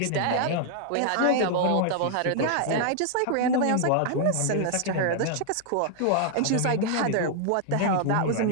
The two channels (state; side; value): different; both; correlation 0.00